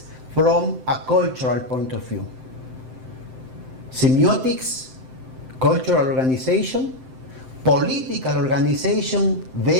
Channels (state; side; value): late; left; 7.7 ms